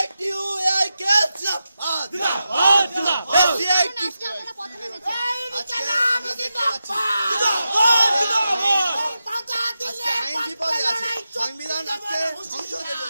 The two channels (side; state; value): both; inverted; correlation -0.90